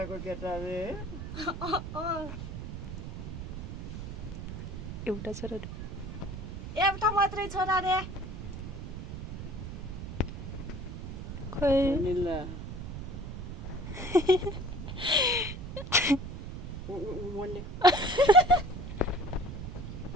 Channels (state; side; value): noise; right; rumble, 7 dB below the sound